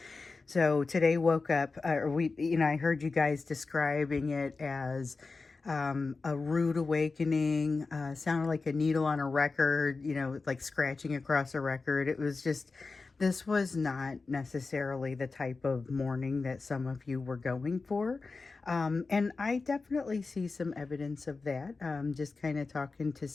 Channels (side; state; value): right; quieter; 4.1 dB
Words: So today woke up, I heard you guys describing it as a rude awakening, sounded like a needle on a record, like scratching across a record. It was just, this was not necessarily the type of morning that some of you were going for. And I definitely see some evidence of that, just kind of talking to